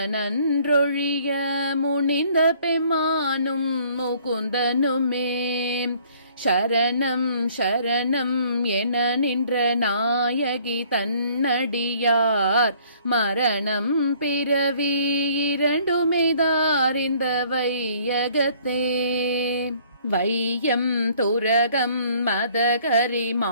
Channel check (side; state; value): both; inverted; correlation -0.59